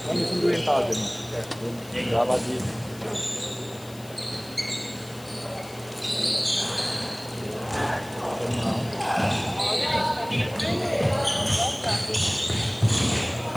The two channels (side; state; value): left; noise; hiss, 20 dB below the sound